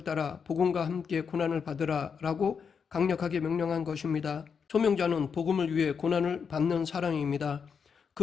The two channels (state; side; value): quieter; right; 6.3 dB